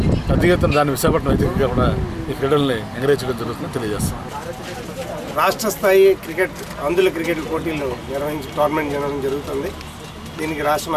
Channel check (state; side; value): identical; both; correlation 1.00